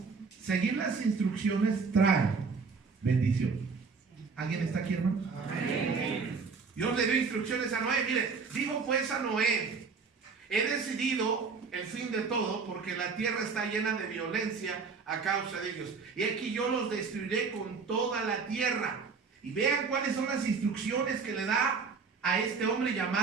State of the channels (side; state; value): left; quieter; 5.0 dB